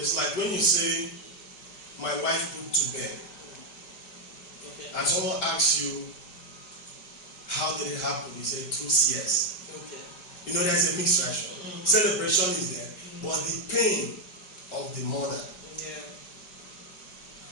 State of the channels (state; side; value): late; right; 5.1 ms